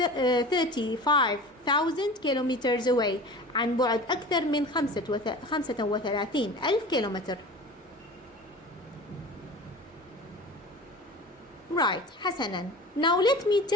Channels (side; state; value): both; normal; correlation 0.37